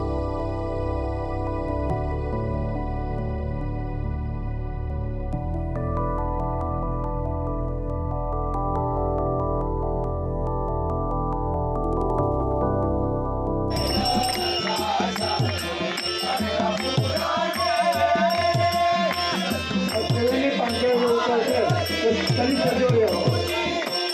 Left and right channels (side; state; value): both; identical; correlation 1.00